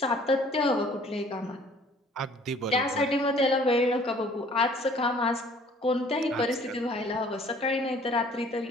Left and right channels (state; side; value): normal; both; correlation 0.55